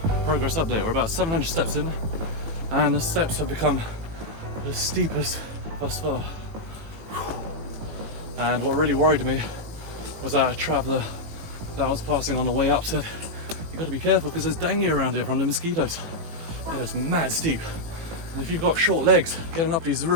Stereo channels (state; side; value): late; left; 19 ms